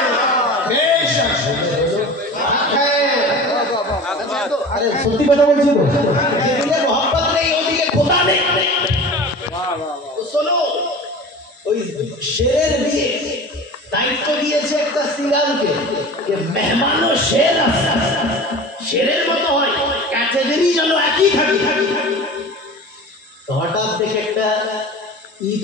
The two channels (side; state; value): both; normal; correlation 0.36